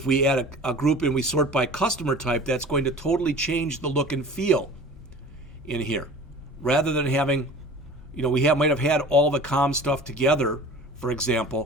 we add a group and we sort by customer type, that's going to totally change the look and feel in here. Rather than having, we might have had all the comm stuff together, for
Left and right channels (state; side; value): normal; both; correlation 0.41